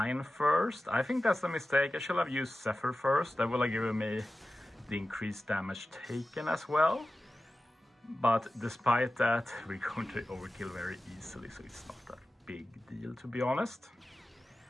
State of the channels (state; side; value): normal; both; correlation 0.94